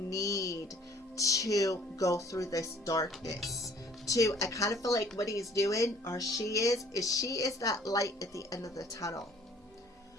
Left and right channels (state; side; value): normal; both; correlation 0.56